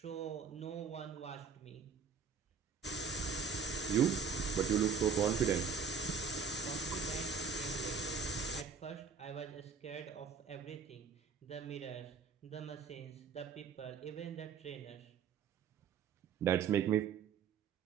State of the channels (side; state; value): left; quieter; 6.1 dB